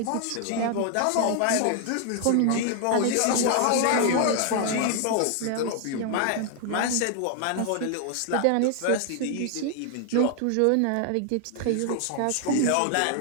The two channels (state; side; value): different; both; correlation 0.00